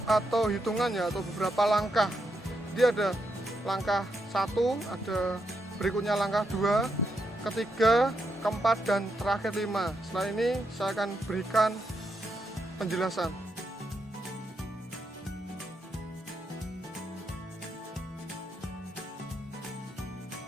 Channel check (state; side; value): normal; both; correlation 0.82